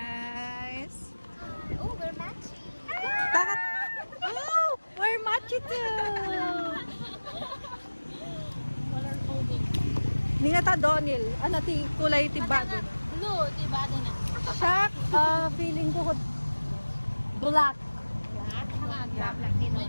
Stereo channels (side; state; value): both; inverted; correlation -1.00